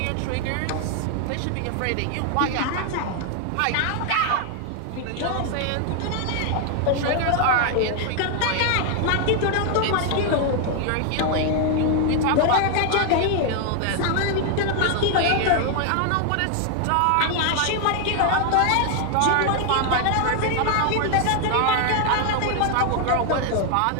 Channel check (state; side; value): different; both; correlation 0.00